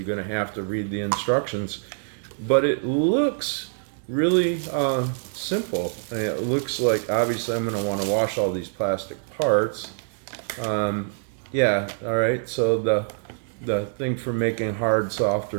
going to have to read the instructions, but it looks really simple. It looks like, obviously, I'm going to want to wash all these plastic parts. Yeah, all right, so the thing for making hard, soft,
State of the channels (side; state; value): left; silent; digital silence